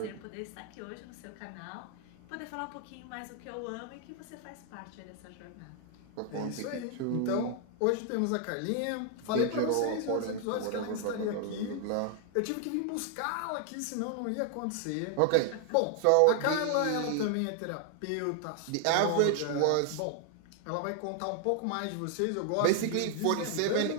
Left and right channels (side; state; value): both; different; correlation 0.00